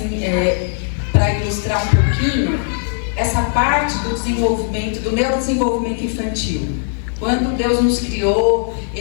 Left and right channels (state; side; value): silent; right; 62 dB below the other